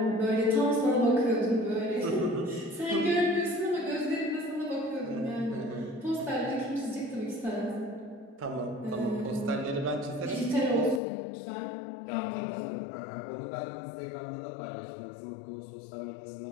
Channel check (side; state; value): right; drops out; at 11.0 s